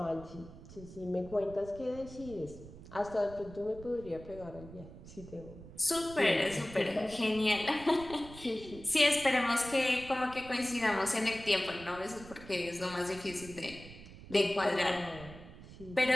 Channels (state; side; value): noise; right; rumble, 16 dB below the sound